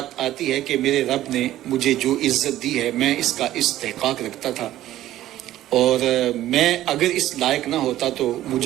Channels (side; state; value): left; quieter; 13.8 dB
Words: آتی ہے کہ میرے رب نے مجھے جو عزت دی ہے میں اس کا استحقاق رکھتا تھا، اور میں اگر اس لائق نہ ہوتا تو